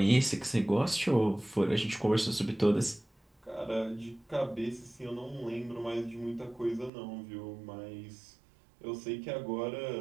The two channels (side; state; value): left; drops out; at 6.9 s